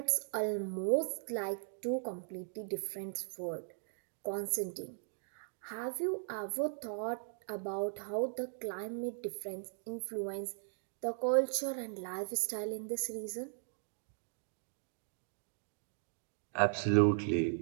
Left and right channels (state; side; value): silent; left; digital silence